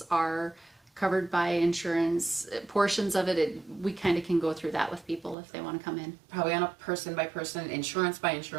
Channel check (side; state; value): left; drops out; at 5.4 s